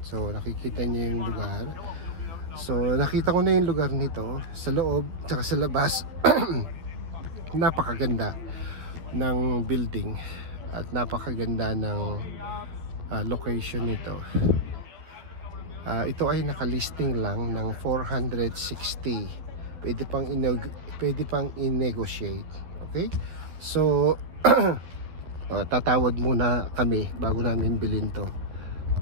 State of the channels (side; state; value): left; late; 12 ms